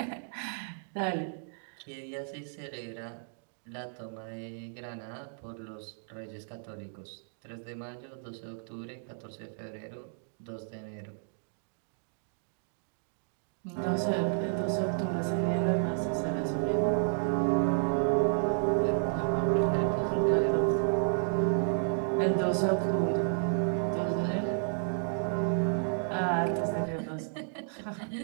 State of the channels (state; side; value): silent; left; digital silence